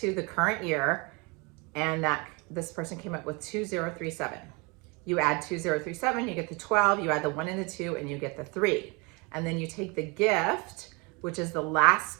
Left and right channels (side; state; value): left; quieter; 29.2 dB